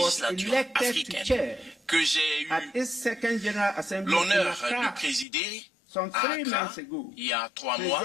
législatures elected to africaines chair que j'ai at eu its second General Assembly in l'honneur Accra de présider some à 3 Accra months ago, il y a 3 mois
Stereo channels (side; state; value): right; drops out; at 5.2 s